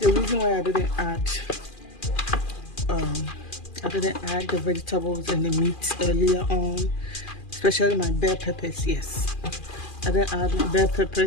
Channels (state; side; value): late; right; 2.4 ms